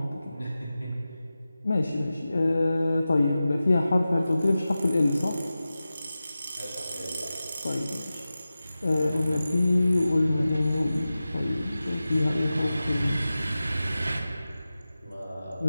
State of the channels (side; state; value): both; inverted; correlation -0.95